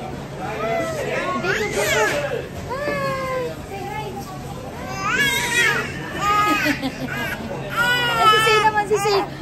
Si naman si Say.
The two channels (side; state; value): both; identical; correlation 1.00